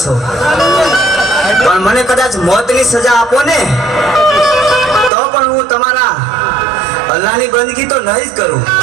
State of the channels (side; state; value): left; drops out; at 5.1 s